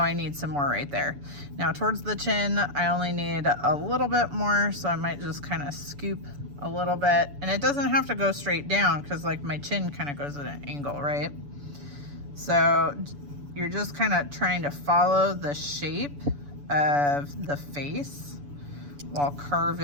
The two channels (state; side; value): late; left; 7.0 ms